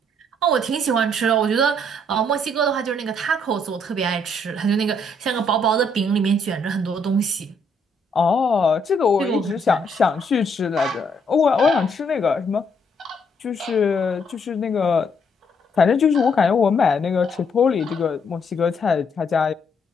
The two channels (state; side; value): normal; both; correlation 0.70